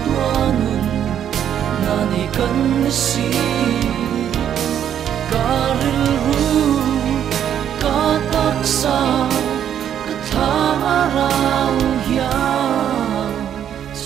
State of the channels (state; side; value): quieter; left; 9.6 dB